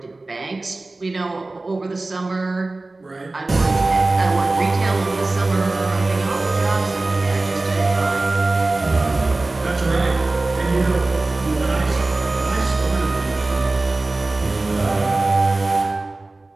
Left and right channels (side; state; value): left; quieter; 3.1 dB